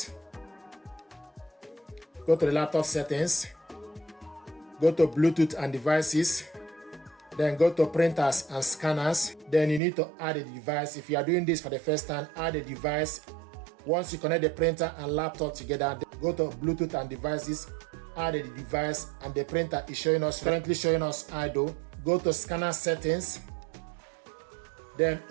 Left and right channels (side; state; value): left; drops out; at 9.8 s